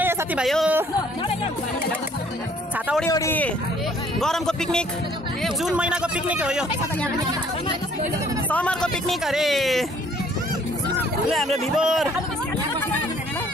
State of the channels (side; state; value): both; normal; correlation 0.60